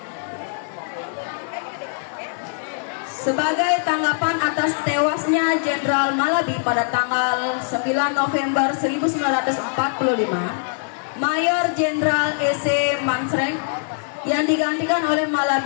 Sebagai tanggapan atas tewasnya Jenderal Malabi pada tanggal 9 November 1945, Mayor Jenderal E.C. Mansreng yang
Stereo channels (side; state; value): right; silent; 64 dB below the other